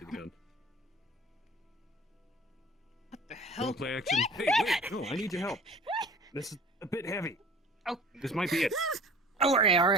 the gun. What the hell? Roleplay action. Hey, wait! No, I need your help. This is a bit heavy. Oh. This might be it.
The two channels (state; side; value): normal; both; correlation 0.45